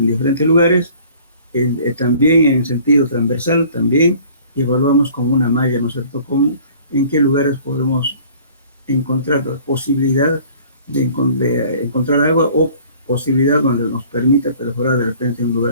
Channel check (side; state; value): both; inverted; correlation -0.51